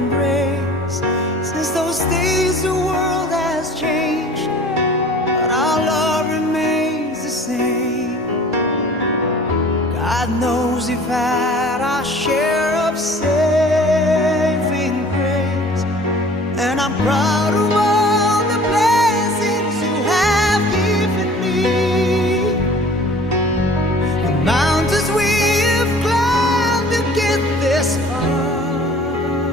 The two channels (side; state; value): both; normal; correlation 0.47